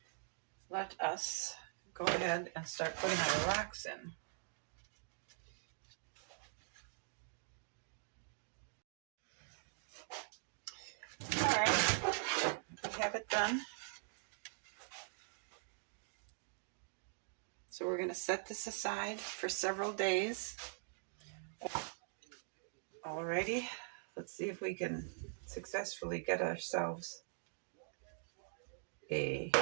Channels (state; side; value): silent; left; digital silence